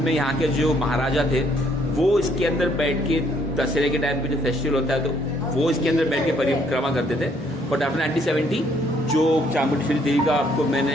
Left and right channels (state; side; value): normal; both; correlation 0.67